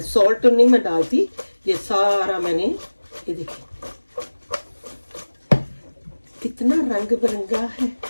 सॉल्ट नहीं मैं डालती, ये सारा मैंने, ये देखिए कितना रंग बिरंगा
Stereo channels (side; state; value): both; inverted; correlation -1.00